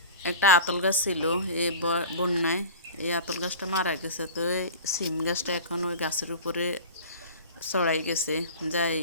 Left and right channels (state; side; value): inverted; both; correlation -0.37